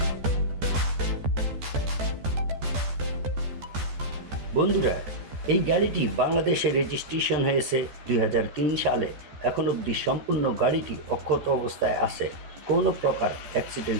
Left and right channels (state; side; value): late; left; 13 ms